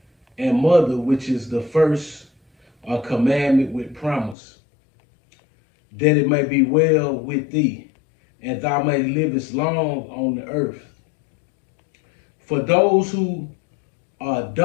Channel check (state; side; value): drops out; right; at 4.4 s